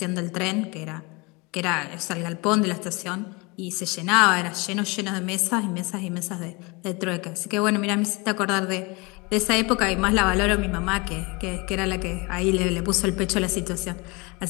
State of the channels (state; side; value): quieter; right; 27.2 dB